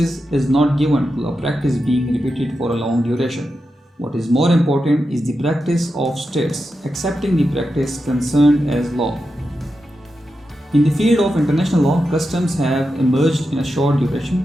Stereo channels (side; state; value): both; normal; correlation 0.89